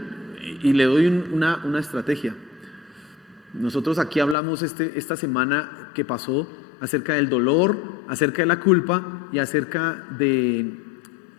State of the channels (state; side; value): drops out; right; at 4.4 s